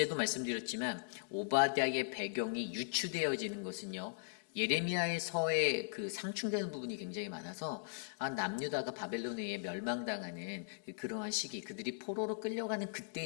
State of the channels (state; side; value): silent; right; digital silence